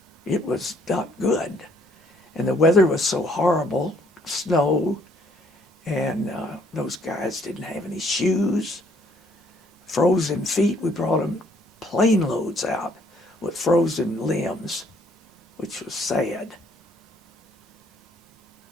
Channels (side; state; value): both; normal; correlation 0.64